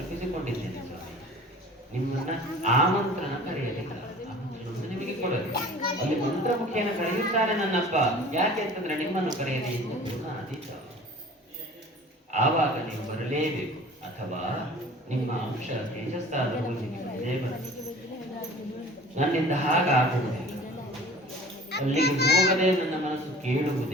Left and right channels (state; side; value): normal; both; correlation 0.44